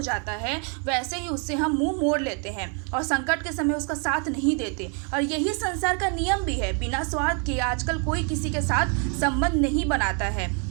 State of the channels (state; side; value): quieter; left; 39.2 dB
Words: जाता है वैसे ही उससे हम मुँह मोड़ लेते हैं और संकट के समय उसका साथ नहीं देते। और यही संसार का नियम भी है, बिना स्वार्थ के आजकल कोई किसी के साथ संबंध नहीं बनाता है।